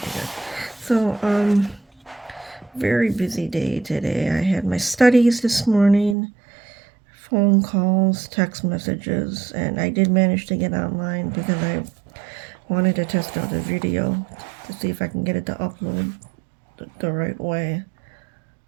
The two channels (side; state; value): left; drops out; at 6.2 s